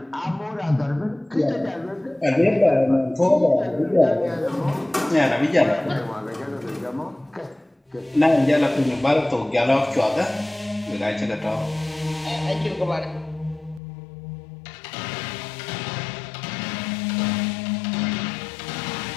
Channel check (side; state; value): right; drops out; at 13.8 s